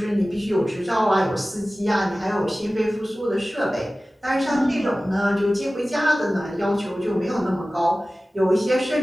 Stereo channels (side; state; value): both; normal; correlation 0.97